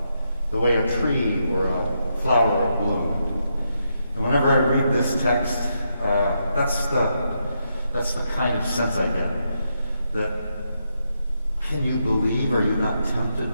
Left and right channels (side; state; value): both; inverted; correlation -0.81